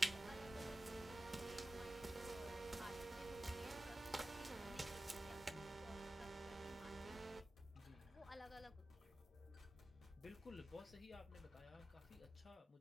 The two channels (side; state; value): both; normal; correlation 0.95